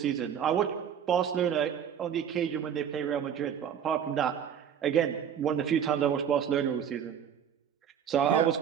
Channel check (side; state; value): left; quieter; 8.6 dB